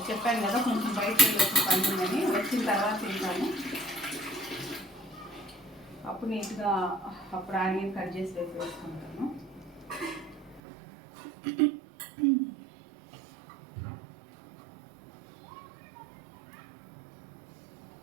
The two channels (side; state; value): left; drops out; at 10.6 s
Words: చెప్పాను కదా కొంచెం బయటకు వచ్చి పండుగని, వచ్చిన తర్వాత తింటాను. అప్పుడు నీట్గా అప్పుడు ఆనియన్ కట్ చేసి వేసుకుంటాను.